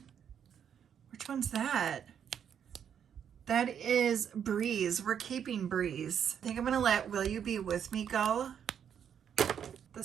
Which one's that? That is Breeze. We're keeping Breeze. I think I'm gonna let Will You Be With Me go. The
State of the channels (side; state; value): left; quieter; 8.4 dB